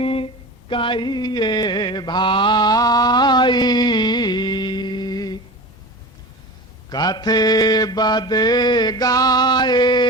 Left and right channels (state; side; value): normal; both; correlation 0.32